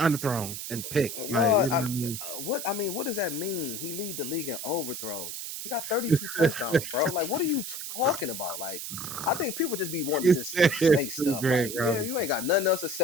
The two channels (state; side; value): noise; right; hiss, 7 dB below the sound